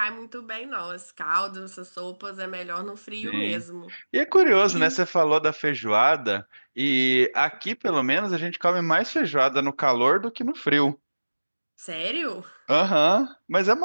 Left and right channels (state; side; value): inverted; both; correlation -1.00